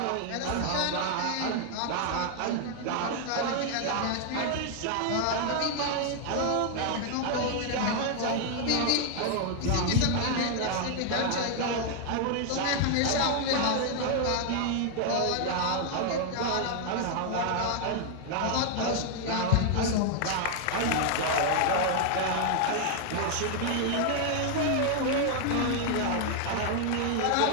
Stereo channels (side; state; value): both; different; correlation 0.00